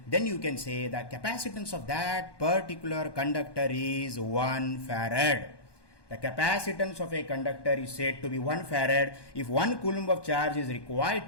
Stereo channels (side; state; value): right; late; 1.2 ms